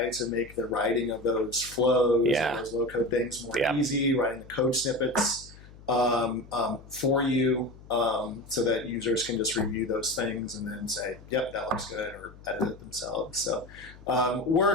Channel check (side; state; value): left; noise; hum, 20 dB below the sound